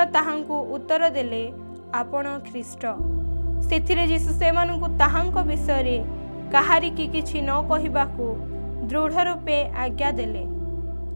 ତାହାଙ୍କୁ ଉତ୍ତର ଦେଲେ, ଆପଣ ଖ୍ରୀଷ୍ଟ। ସେଥିରେ ଯୀଶୁ ସେମାନଙ୍କୁ ତାହାଙ୍କ ବିଷୟରେ କାହାରିକି କିଛି ନ କହିବାକୁ ଦୃଢ଼ ରୂପେ ଆଜ୍ଞା ଦେଲେ।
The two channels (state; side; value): inverted; both; correlation -1.00